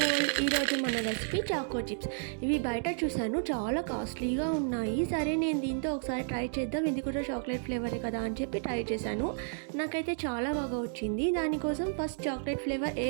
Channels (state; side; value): silent; left; digital silence